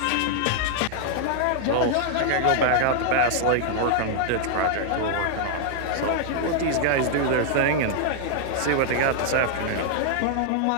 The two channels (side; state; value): both; different; correlation -0.01